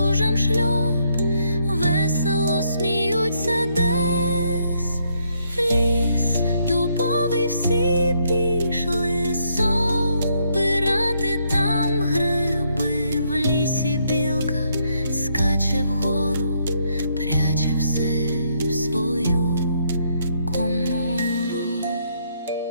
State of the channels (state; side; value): inverted; both; correlation -0.73